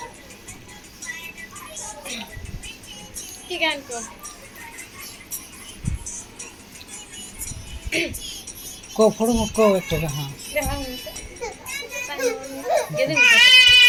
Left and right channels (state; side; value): identical; both; correlation 1.00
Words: কি গান কর? কও ফটোফট কও একটা গান।